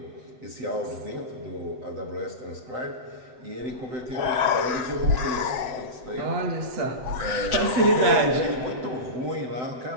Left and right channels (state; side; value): late; left; 7.9 ms